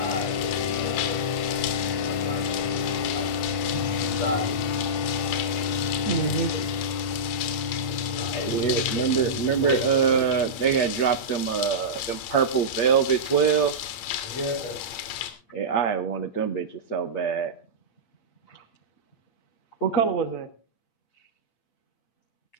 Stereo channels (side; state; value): right; late; 8.6 ms